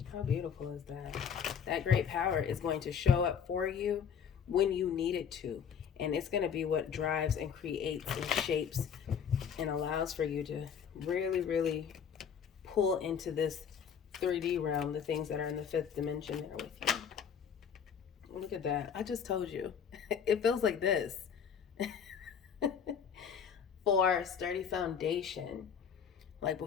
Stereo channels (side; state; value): right; quieter; 7.4 dB